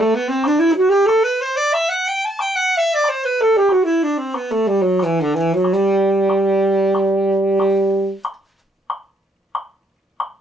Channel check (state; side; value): normal; both; correlation 0.74